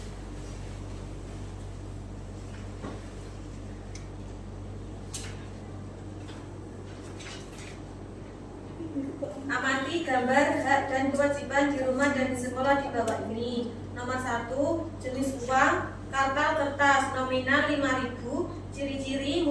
Amati gambar hak dan kewajiban di rumah dan di sekolah di bawah ini. Nomor 1, jenis uang, kartal kertas nominal 5.000, ciri-ciri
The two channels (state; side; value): identical; both; correlation 1.00